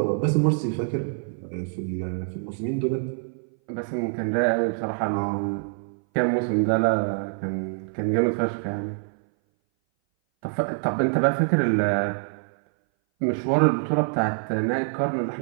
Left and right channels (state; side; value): silent; left; 59 dB below the other